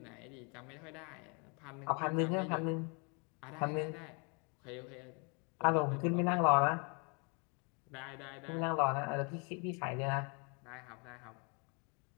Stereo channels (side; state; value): right; quieter; 34.2 dB